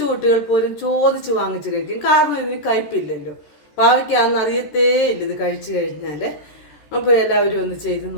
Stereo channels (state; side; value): late; right; 14 ms